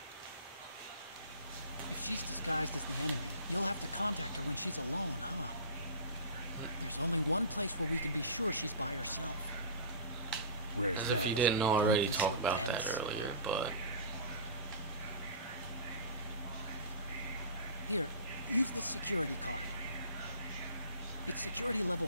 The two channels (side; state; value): both; inverted; correlation -0.37